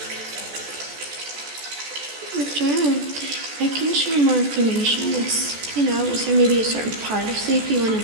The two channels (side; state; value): left; late; 14 ms